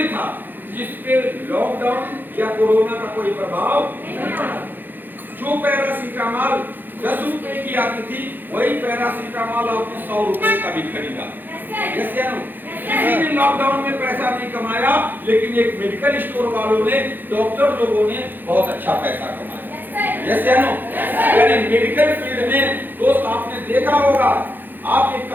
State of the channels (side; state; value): left; late; 0.090 ms